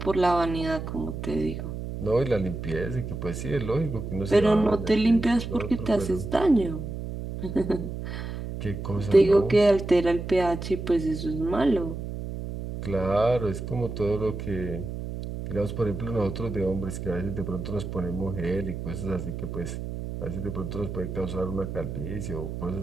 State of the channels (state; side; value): noise; right; hum, 6 dB below the sound